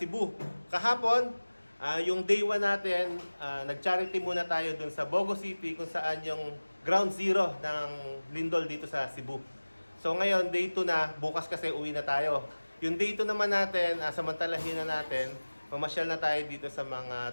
Kahapon, yung day 1 natin, nag-charity muna tayo dun sa Bogo City kung saan yung ground zero ng lindol dito sa Cebu. So ngayon, day 2 na, bukas kasi uwi na tayo. Yung day 2 naman natin, samantalahin na natin, mamasyal na tayo dito sa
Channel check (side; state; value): both; inverted; correlation -1.00